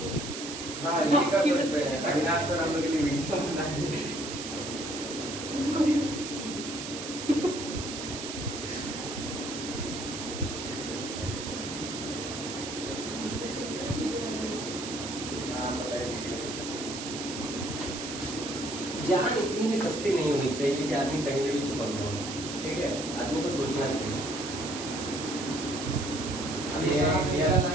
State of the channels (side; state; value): right; noise; hiss, 7 dB below the sound